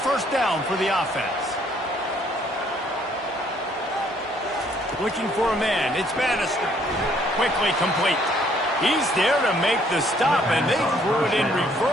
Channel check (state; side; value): normal; both; correlation 0.64